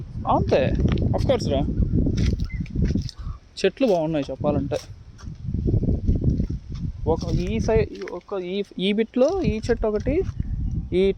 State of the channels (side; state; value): both; identical; correlation 1.00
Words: అంతే, అఫ్కోర్స్ రా. చెట్లు బాగున్నాయి చెప్పాలంటే. ఒక ఈ సైడ్ ఒక ఈ బిట్లో ఈ చెట్టు ఒకటి, ఈ